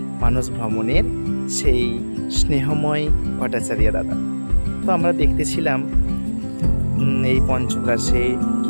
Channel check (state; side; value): inverted; both; correlation -1.00